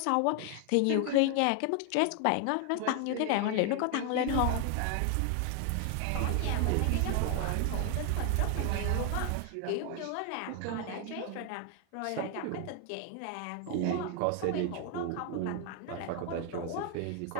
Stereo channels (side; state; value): both; different; correlation 0.00